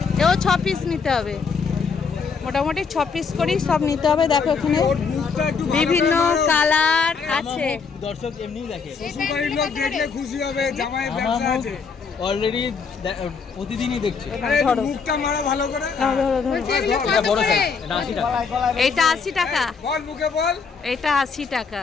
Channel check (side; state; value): right; quieter; 5.5 dB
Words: এও 6 পিস নিতে হবে। মোটামুটি 6 পিস করেই সব নিতে হবে। দেখো এখানে ওর মুখটা একটু ভালো বিভিন্ন করে নাও। কালার আছে। দর্শক এমনিই দেখে। শ্বশুরবাড়ির লোক দেখলে খুশি হবে, জামাই আমার ব্যবসা মুখ আছে। অলরেডি প্রতিদিনই দেখছে। আরে একটু মুখটা মারো ভালো করে। এটা বড় সাইজ। এটা 80 টাকা। এইটা 80 টাকা। বল মুখে বল। এটা 80 টাকা।